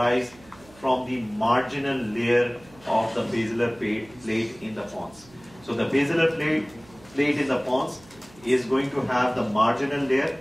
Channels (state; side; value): noise; right; hum, 25 dB below the sound